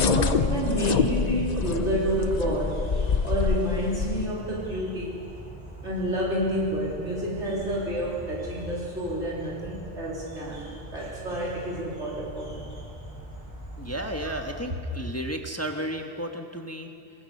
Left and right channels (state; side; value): normal; both; correlation 0.13